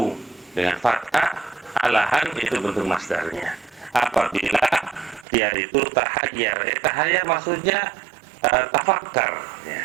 dengan fathah, alahan itu bentuk masdarnya. Apabila dia itu tahayyar, tahayyar maksudnya tafakkar.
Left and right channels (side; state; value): left; drops out; at 5.2 s